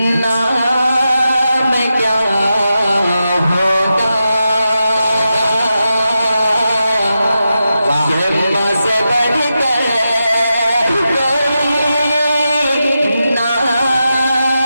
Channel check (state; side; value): inverted; both; correlation -0.89